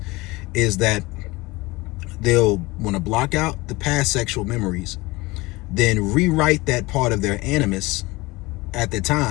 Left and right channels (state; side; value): quieter; right; 22.1 dB